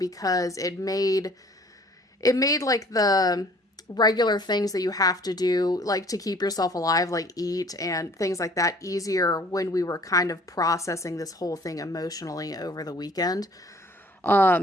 it made like the regular things that you have to do, like, to keep yourself alive, like eat and things like that, easier when we were kind of processing this whole thing emotionally over the weekend.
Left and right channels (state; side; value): normal; both; correlation 0.54